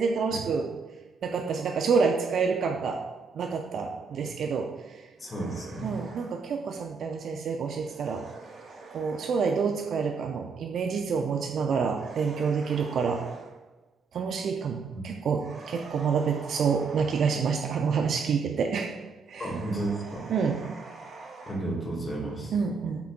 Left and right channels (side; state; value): left; quieter; 5.1 dB